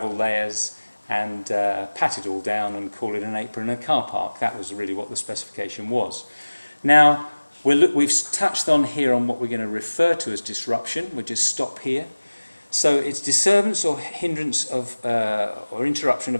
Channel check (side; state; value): both; inverted; correlation -1.00